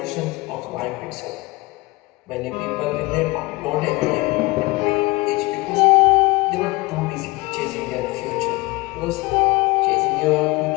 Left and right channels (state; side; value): quieter; right; 22.6 dB